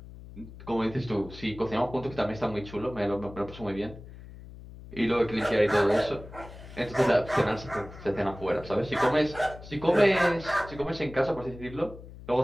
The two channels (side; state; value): left; noise; hum, 16 dB below the sound